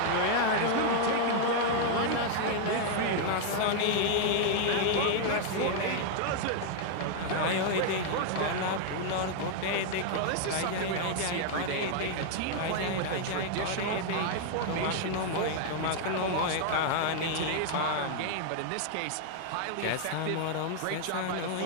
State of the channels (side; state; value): both; different; correlation 0.00